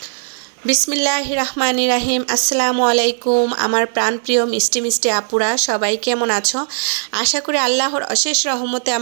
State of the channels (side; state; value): left; silent; digital silence